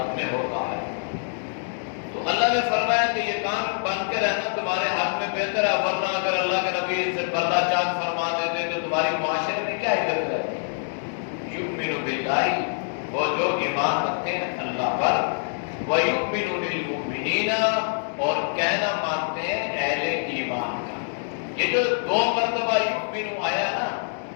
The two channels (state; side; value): silent; right; digital silence